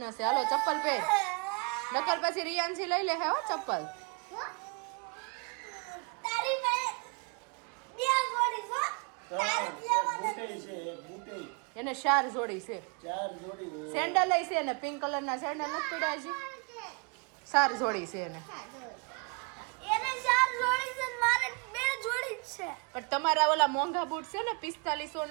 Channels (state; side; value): quieter; left; 33.6 dB